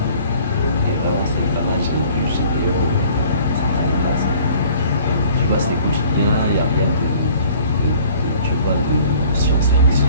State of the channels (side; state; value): both; inverted; correlation -0.53